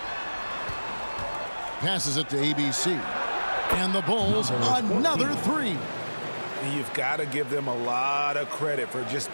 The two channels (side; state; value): both; inverted; correlation -1.00